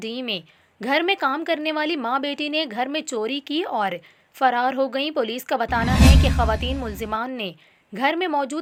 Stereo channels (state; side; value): identical; both; correlation 1.00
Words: میں گھر میں کام کرنے والی ماں بیٹی نے گھر میں چوری کی اور فرار ہو گئیں۔ پولیس کا بتانا ہے کہ خواتین ملزمان نے گھر میں